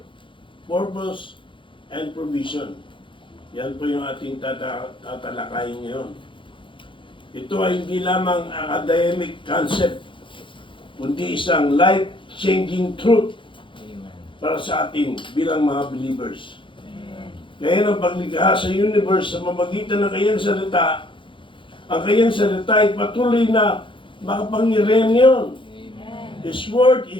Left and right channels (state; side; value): late; right; 0.24 ms